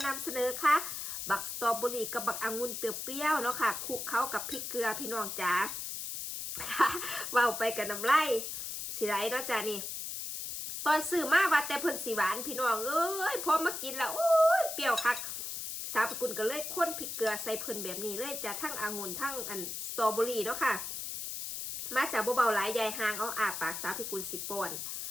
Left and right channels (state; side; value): noise; left; hiss, 5 dB below the sound